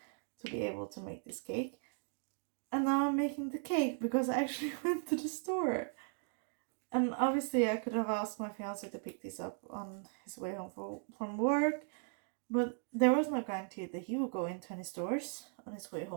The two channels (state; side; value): silent; left; 53 dB below the other